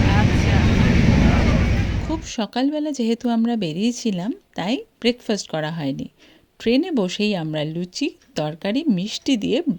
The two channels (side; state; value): both; identical; correlation 1.00